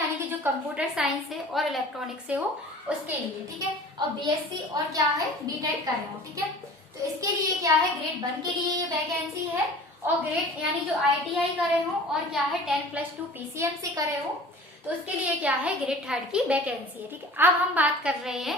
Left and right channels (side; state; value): both; normal; correlation 0.43